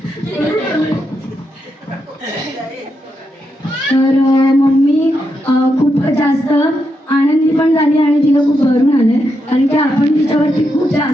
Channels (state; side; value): normal; both; correlation 0.83